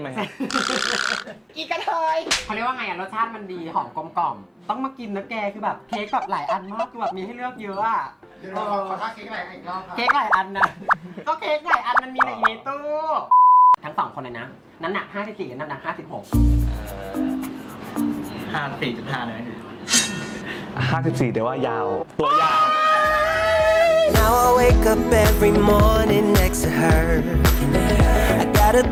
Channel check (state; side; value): identical; both; correlation 1.00